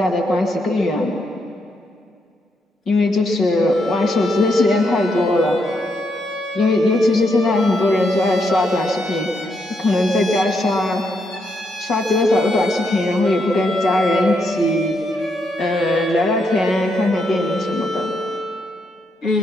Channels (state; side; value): normal; both; correlation 0.78